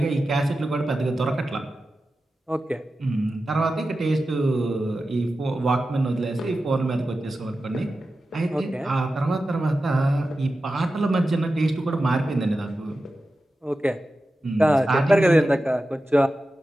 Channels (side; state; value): both; normal; correlation 0.93